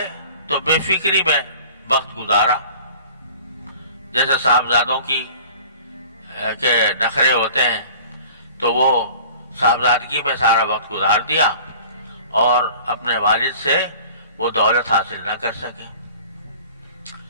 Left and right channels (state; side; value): inverted; both; correlation -0.46